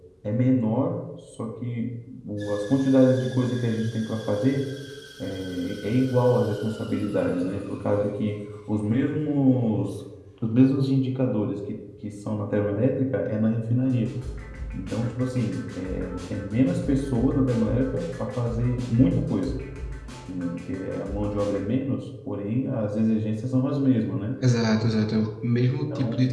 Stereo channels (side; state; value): both; identical; correlation 1.00